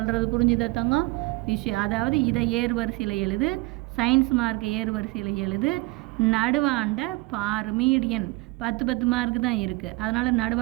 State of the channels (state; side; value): quieter; left; 22.5 dB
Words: புரிஞ்சுதா தங்கம்? விஷயம் அதாவது இதை ஏறு வரிசையில் எழுது, சயின்ஸ் மார்க் ஏறு வரிசையில் எழுது. நடுவாண்ட பாரு, மீடியன் 10 10 மார்க் தான் இருக்குது. அதனால்